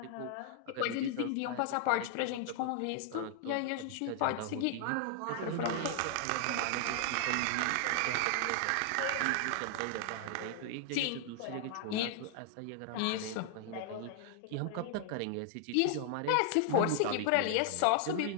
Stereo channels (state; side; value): different; both; correlation 0.00